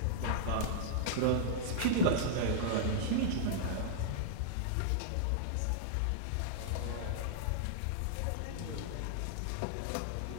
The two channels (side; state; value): both; different; correlation -0.01